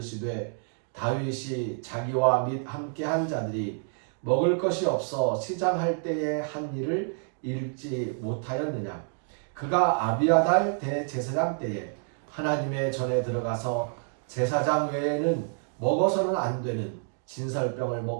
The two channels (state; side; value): silent; left; 58 dB below the other